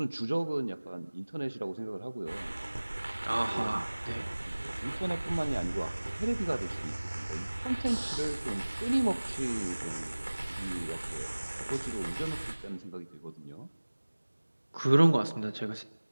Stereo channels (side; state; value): both; inverted; correlation -1.00